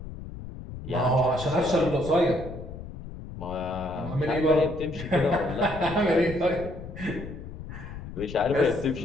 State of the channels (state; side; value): noise; left; rumble, 11 dB below the sound